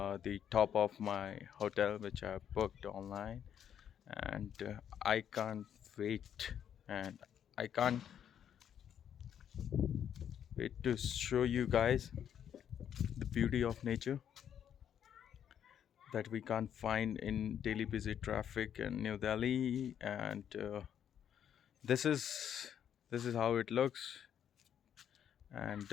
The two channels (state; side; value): quieter; right; 9.2 dB